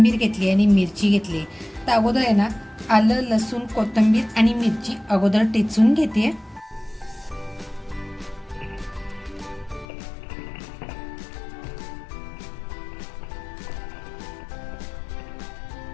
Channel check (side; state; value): right; drops out; at 9.9 s